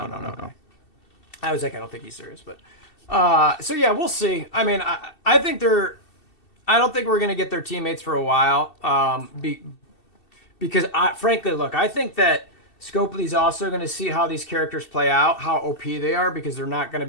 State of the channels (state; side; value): late; right; 2.7 ms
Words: I was like, I don't think he's serious, but. So yeah, we'll see. I mean, I think I don't think we're gonna get their teammates for a while. because frankly, look, I think that Scopely's also going to see how these characters play out, how OP they are, because they're not going to